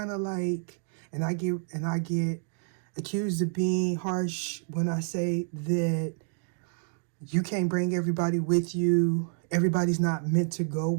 of like, and I get accused of being harsh when I say that you can't bring everybody with you. Everybody's not meant to go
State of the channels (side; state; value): left; silent; 59 dB below the other